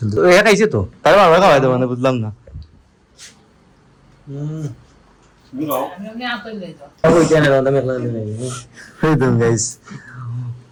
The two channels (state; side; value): identical; both; correlation 1.00